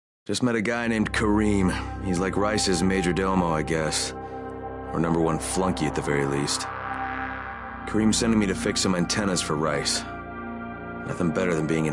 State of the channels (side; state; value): both; identical; correlation 1.00